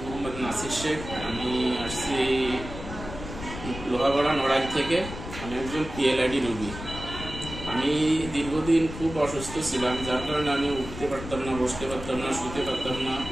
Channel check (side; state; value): left; noise; rumble, 10 dB below the sound